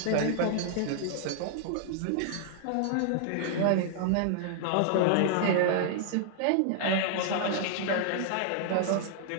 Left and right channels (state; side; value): different; both; correlation -0.01